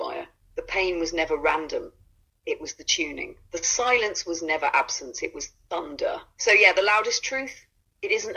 The pain was never random, it was the tuning. The silence was never absence, it was thunder. So yeah, the loudest truth, it isn't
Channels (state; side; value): identical; both; correlation 1.00